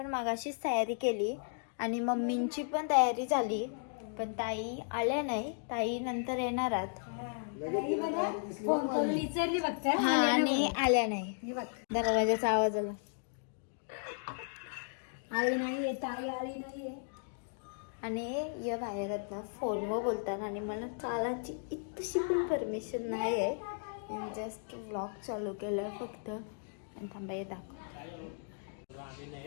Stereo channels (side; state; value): right; silent; digital silence